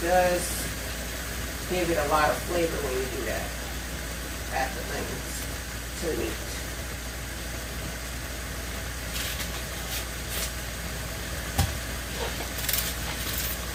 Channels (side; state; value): both; identical; correlation 1.00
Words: does give it a lot of flavor when you do that. Add the onions to the meat.